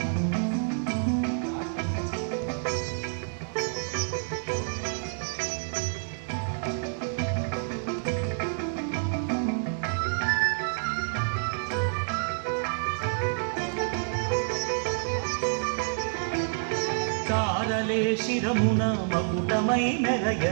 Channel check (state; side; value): silent; left; digital silence